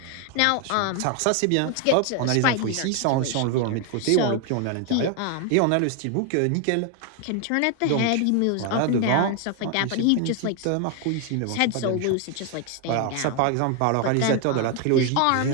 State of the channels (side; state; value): both; different; correlation 0.01